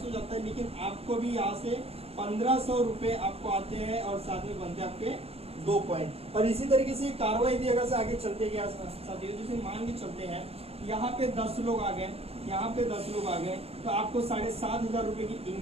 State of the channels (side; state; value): left; late; 0.29 ms